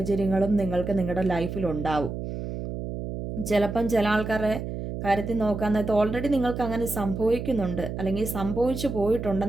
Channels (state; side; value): noise; right; hum, 6 dB below the sound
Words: നിങ്ങൾക്ക് നിങ്ങളുടെ ലൈഫിലുണ്ടാവും. ചിലപ്പം ചില ആൾക്കാരുടെ കാര്യത്തിൽ നോക്കാൻ നേരത്ത് ഓൾറെഡി നിങ്ങൾക്ക് അങ്ങനെ സംഭവിക്കുന്നുണ്ട്, അല്ലെങ്കിൽ സംഭവിച്ചു